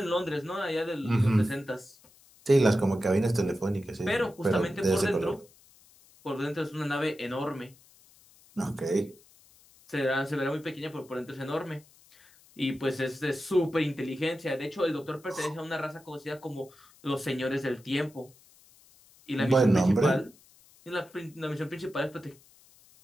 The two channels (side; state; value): left; noise; hiss, 27 dB below the sound